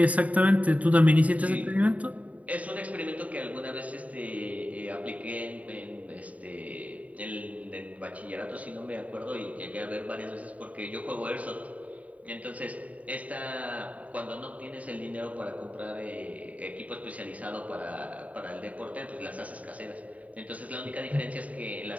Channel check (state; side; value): late; left; 0.069 ms